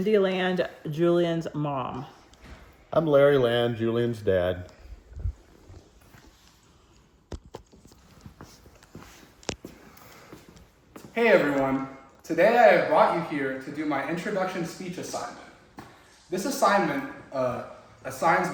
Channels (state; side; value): identical; both; correlation 1.00